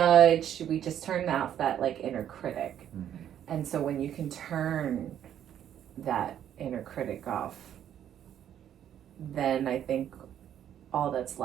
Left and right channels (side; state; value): left; quieter; 10.2 dB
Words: We just turn off that like inner critic. Mm-hmm. And so when you can turn that inner critic off, then I think all that's